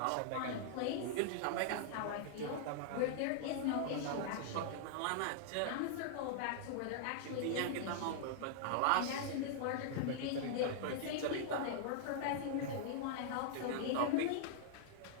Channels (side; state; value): both; different; correlation -0.01